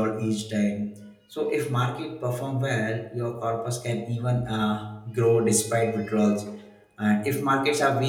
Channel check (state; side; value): identical; both; correlation 1.00